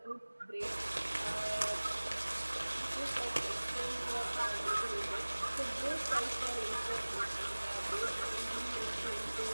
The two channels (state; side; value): inverted; both; correlation -1.00